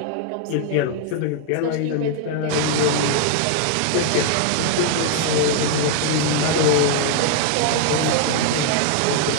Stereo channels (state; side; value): different; both; correlation 0.00